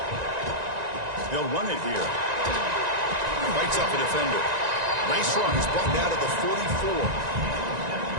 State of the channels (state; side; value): late; left; 1.9 ms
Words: They'll run it here. Fights off a defender. Nice run. He's brought down to the 44.